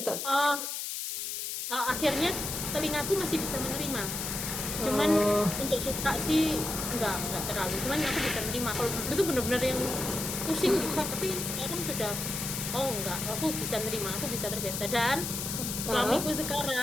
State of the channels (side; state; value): left; noise; hiss, 4 dB below the sound